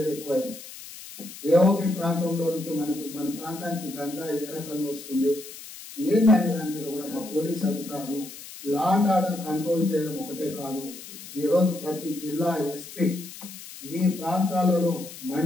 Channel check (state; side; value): noise; left; hiss, 14 dB below the sound